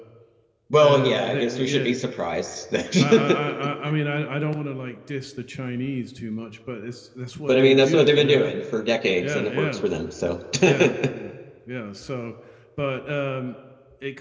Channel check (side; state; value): both; identical; correlation 1.00